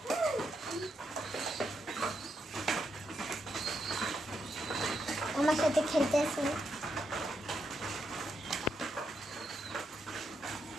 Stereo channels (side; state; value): both; normal; correlation 0.81